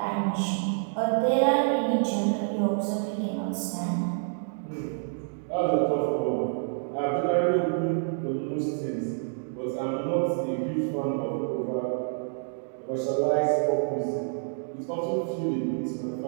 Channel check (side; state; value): left; silent; digital silence